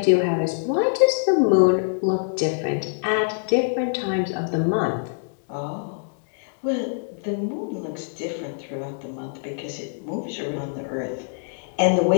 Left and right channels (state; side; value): silent; right; digital silence